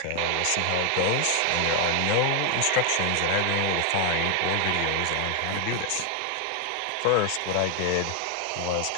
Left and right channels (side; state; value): both; different; correlation 0.00